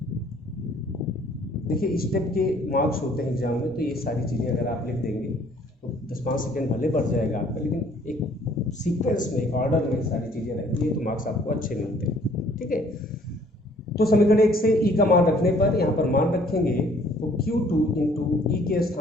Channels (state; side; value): normal; both; correlation 0.59